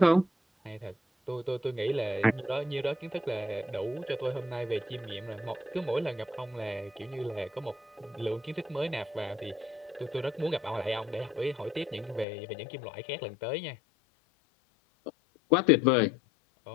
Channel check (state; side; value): drops out; right; at 12.2 s